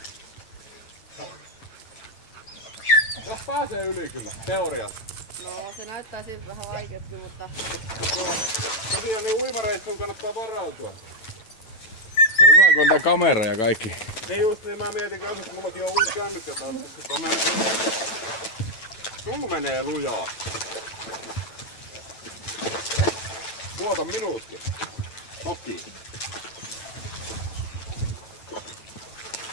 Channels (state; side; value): late; right; 9.0 ms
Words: Jos pääsee yli kyllä, teoriassa. No, se näyttää siltä vähän vaikeakin, mutta... Tosiaan niin uimareissuun kannattaa varautua. Se on hyvä, kun on tää kamera ja kaikki. Niin just niin, mä mietin kanssa, että mullakin on uusi kännykkä taas, koska sulla menee lujaa. Tuota minuuttia. Toki.